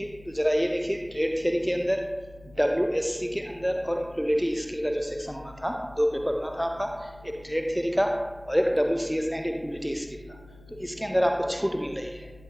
तो ज़रा ये देखिए। ट्रेड थियरी के अंदर, WSC के अंदर और एम्प्लॉयबिलिटी स्किल का जो सेक्शन होना था, दो पेपर होना था आपका, एक ट्रेड थियरी का और एक WCS एंड एम्प्लॉयबिलिटी स्किल का। तो इसके अंदर आपको छूट मिल रही है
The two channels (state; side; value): noise; left; hum, 24 dB below the sound